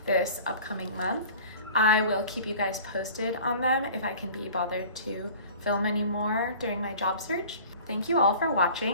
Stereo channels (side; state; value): both; inverted; correlation -0.44